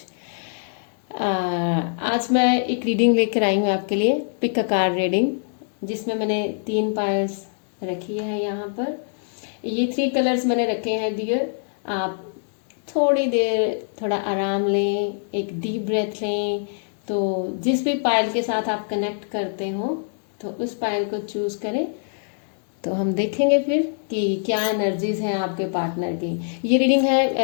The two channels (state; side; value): silent; right; digital silence